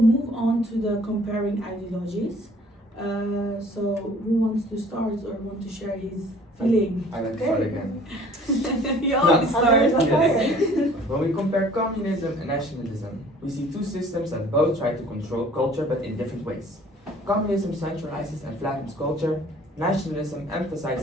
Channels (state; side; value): normal; both; correlation 0.53